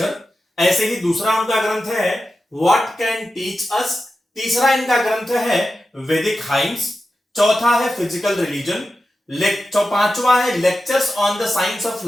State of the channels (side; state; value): both; normal; correlation 0.92